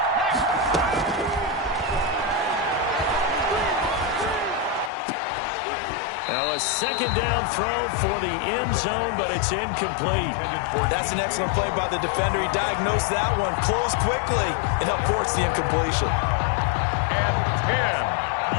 Now a 2nd down throw for the end zone, but it's incomplete. That's an excellent play by the defender. He diagnosed that one, closed quickly, and helped force the incompletion. And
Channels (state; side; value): drops out; right; at 4.9 s